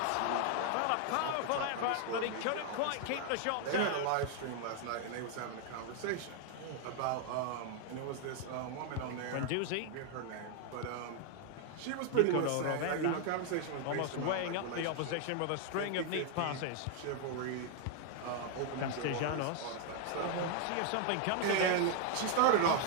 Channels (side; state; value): both; different; correlation 0.00